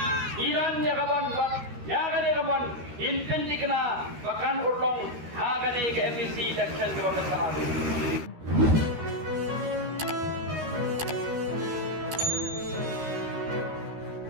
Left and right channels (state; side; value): late; left; 13 ms